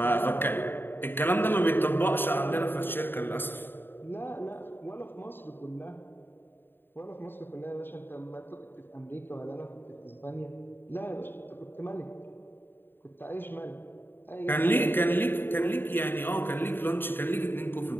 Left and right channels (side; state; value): right; late; 0.098 ms